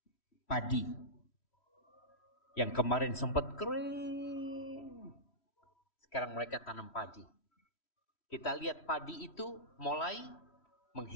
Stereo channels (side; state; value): right; late; 3.1 ms